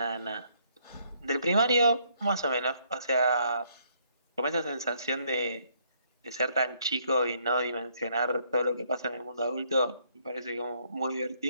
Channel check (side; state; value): both; inverted; correlation -0.69